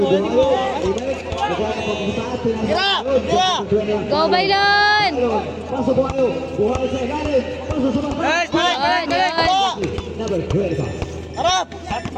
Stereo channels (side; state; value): both; identical; correlation 1.00